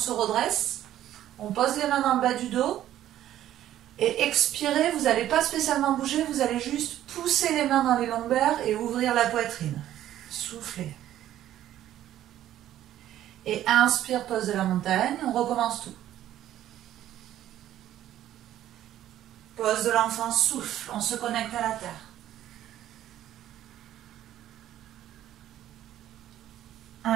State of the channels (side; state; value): left; quieter; 12.4 dB